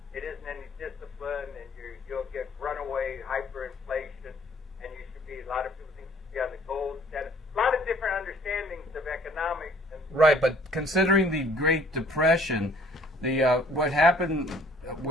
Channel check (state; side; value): normal; both; correlation 0.57